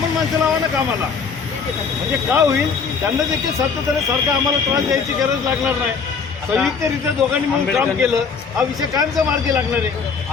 माणसं लावा ना कामाला. म्हणजे का होईल त्यांना देखील सातत्याने आम्हाला त्रास द्यायची गरज लागणार नाही. संयुक्तरित्या दोघांनी म्हणून काम केलं. हा विषय कायमचा मार्गी लागणार आहे.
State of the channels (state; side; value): quieter; right; 5.5 dB